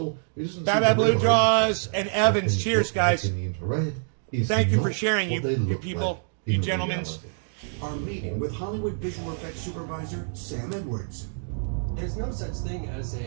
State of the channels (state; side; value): silent; left; digital silence